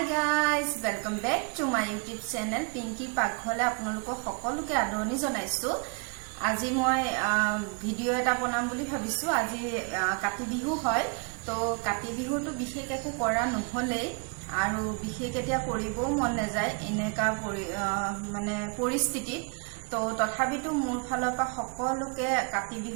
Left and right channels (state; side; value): quieter; left; 35.8 dB